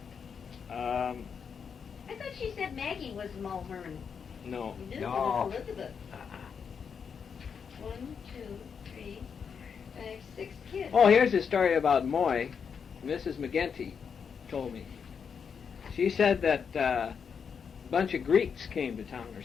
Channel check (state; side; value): quieter; right; 6.5 dB